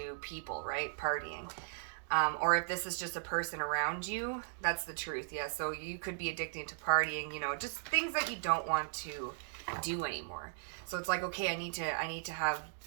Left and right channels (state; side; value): silent; left; digital silence